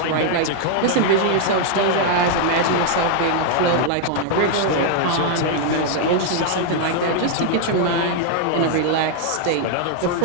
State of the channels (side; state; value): both; different; correlation 0.00